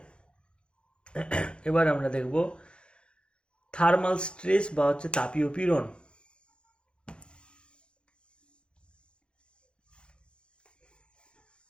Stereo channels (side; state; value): right; late; 0.055 ms